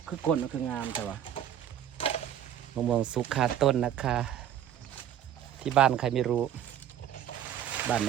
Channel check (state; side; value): quieter; left; 10.4 dB